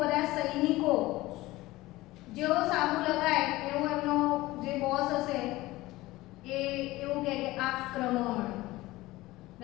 બધા સૈનિકો જેવો સાબુ લગાય એવો એમનો જે બોસ હશે એ એવું કહે કે આક્રમણ.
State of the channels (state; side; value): quieter; right; 18.6 dB